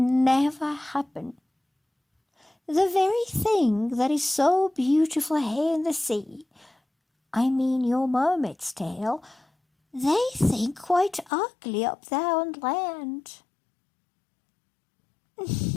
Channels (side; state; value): right; drops out; at 11.3 s